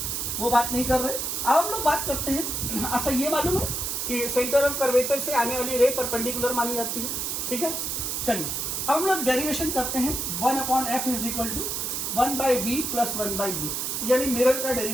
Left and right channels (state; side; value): noise; right; hiss, 2 dB below the sound